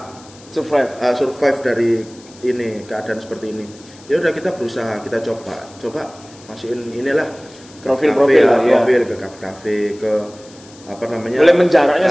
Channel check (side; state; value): left; noise; hiss, 23 dB below the sound